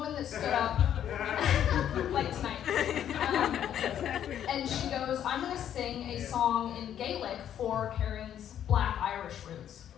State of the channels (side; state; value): right; quieter; 10.1 dB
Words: that stood up, like tonight, and she goes, I'm going to sing a song in Gaelic for Karen's Black Irish roots.